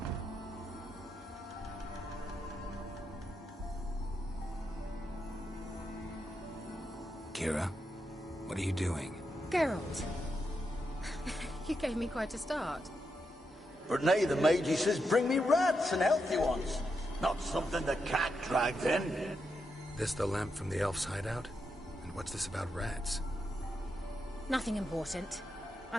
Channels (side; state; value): both; normal; correlation 0.84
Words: Kira, what are you doing? Geralt. You gave me quite a start. But nay, the Magi says bring me rats and healthy ones. Not something the cat dragged in. This the lamp from the elf's hideout? And what's this about rats? Nothing important.